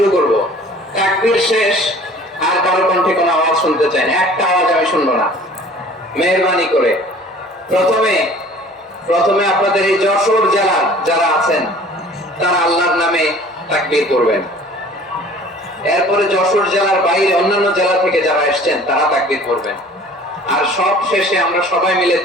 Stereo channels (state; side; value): normal; both; correlation 0.49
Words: করব। তাকবীর শেষ আর কারো কণ্ঠে কোনো আওয়াজ শুনতে চাই না, একটা আওয়াজ আমি শুনবো না, মেহেরবানি করে। প্রথমে আপনাদের এই যশোর জেলার যারা আছেন তারা আল্লাহর নামে তাকবীর করবেন। এরপরে যশোর জেলার বাইরে অন্যান্য জেলা থেকে যারা এসেছেন তারা তাকবীর করবেন। আর সব শেষে আমরা সবাই মিলে